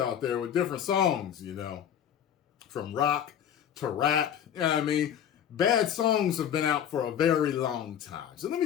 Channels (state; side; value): quieter; right; 9.4 dB